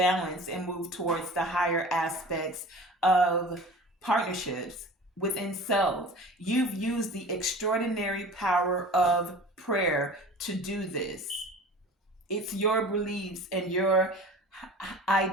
and move towards the higher aspects of partnerships within self. You've used the extraordinary power of prayer to do this. It's your beliefs and your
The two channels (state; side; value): normal; both; correlation 0.40